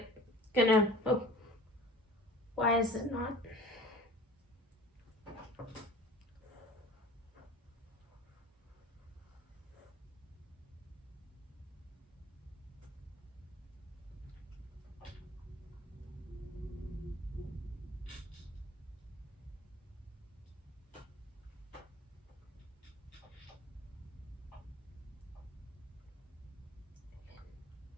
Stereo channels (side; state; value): both; normal; correlation 0.44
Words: why is it not?